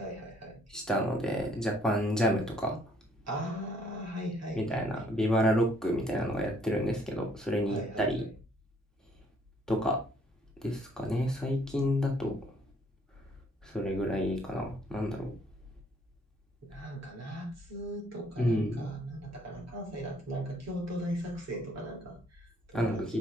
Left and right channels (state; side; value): normal; both; correlation 0.63